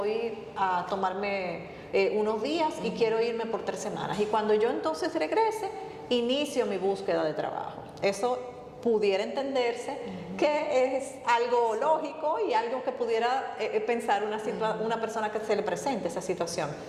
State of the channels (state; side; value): identical; both; correlation 1.00